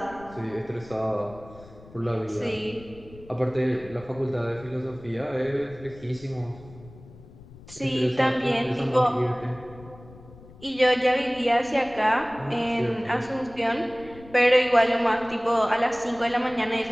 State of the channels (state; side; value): noise; left; rumble, 20 dB below the sound